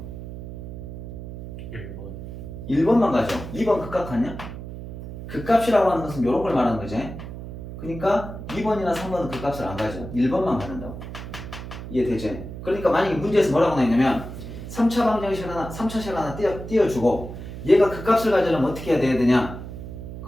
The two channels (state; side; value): noise; right; hum, 10 dB below the sound